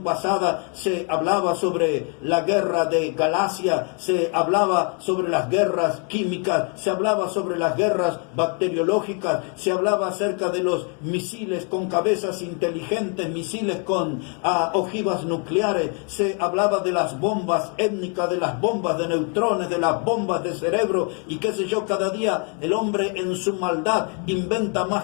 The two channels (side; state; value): right; quieter; 38.5 dB